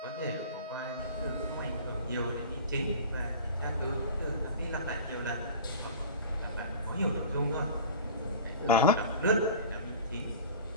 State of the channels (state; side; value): inverted; both; correlation -0.38